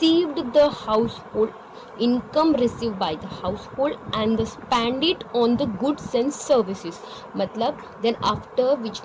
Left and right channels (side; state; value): both; identical; correlation 1.00